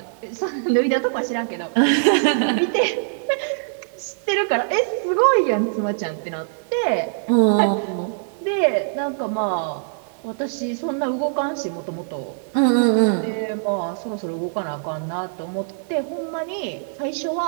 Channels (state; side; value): silent; left; digital silence